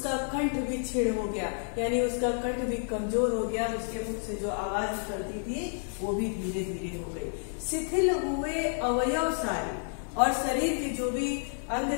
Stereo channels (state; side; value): silent; right; digital silence